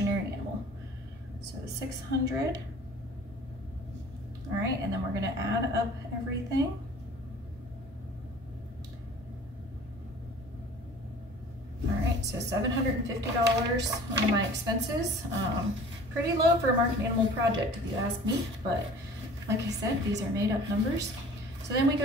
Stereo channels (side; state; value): both; normal; correlation 0.46